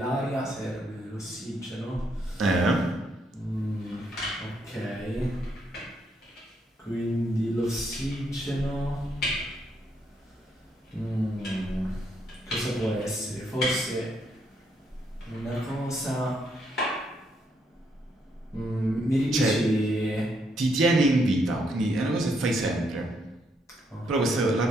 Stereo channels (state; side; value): normal; both; correlation 0.75